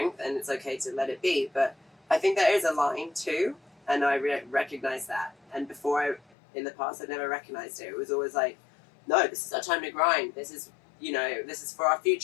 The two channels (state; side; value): drops out; right; at 6.2 s